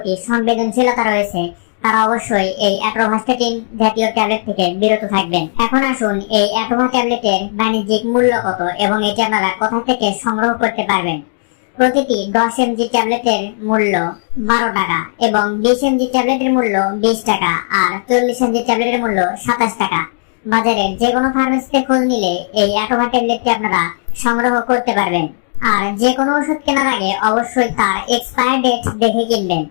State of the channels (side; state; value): right; silent; digital silence